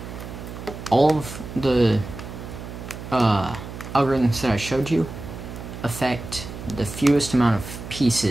all of the algorithms that I showed you affect the fewest amount of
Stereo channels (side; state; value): right; noise; hum, 11 dB below the sound